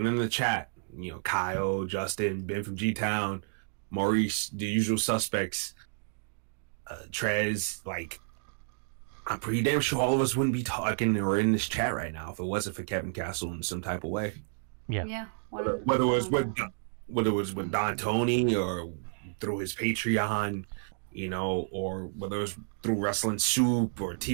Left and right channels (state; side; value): silent; left; digital silence